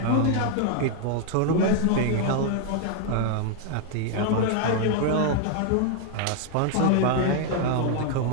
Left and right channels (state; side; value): different; both; correlation 0.00